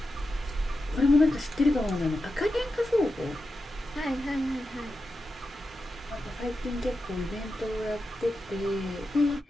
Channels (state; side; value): normal; both; correlation 0.90